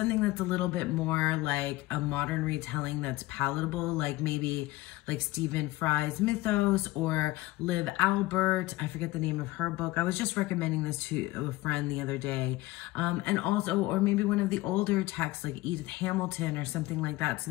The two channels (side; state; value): right; quieter; 19.0 dB